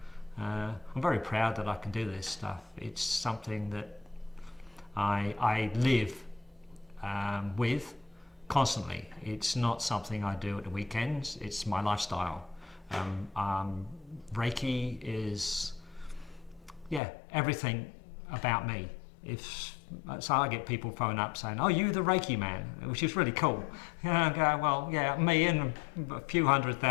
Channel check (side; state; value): right; drops out; at 17.0 s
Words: I'm very proud that I can do this stuff. It's something that I live with constantly. It's not something I do at the weekends, it's my lifestyle. Reiki is, everything about me. So I get people phone up saying, "Oh, you the Reiki man," which is really cool. I go, well, yeah, me and a few